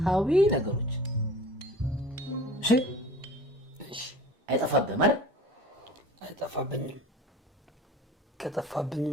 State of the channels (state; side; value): normal; both; correlation 0.42